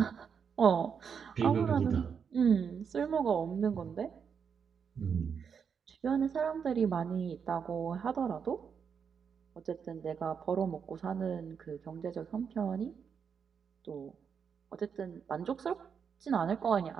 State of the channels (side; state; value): left; quieter; 6.7 dB